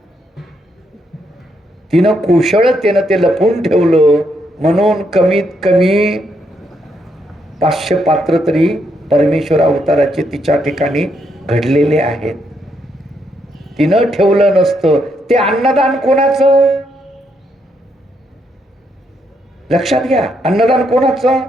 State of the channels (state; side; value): normal; both; correlation 0.77